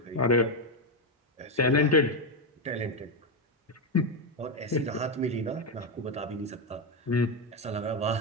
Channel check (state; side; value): normal; both; correlation 0.07